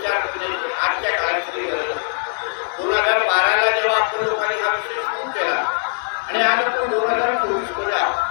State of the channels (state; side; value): silent; right; digital silence